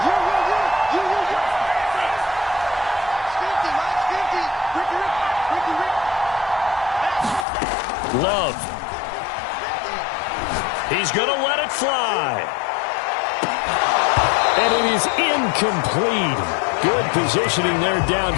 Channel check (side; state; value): right; drops out; at 7.5 s